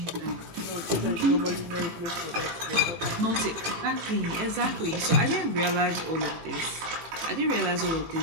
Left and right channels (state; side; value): late; left; 18 ms